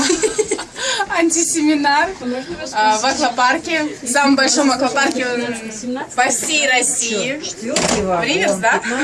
Антисеминар в аквапарке, в самом большом аквапарке по всей России. В Риверс, да,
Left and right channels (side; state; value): both; identical; correlation 1.00